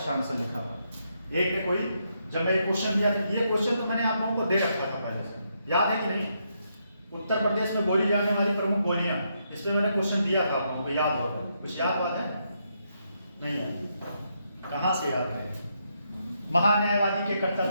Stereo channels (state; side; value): inverted; both; correlation -0.79